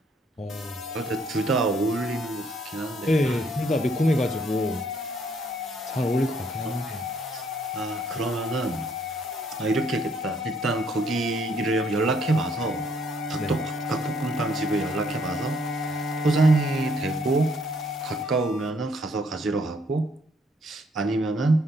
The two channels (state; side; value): normal; both; correlation 0.67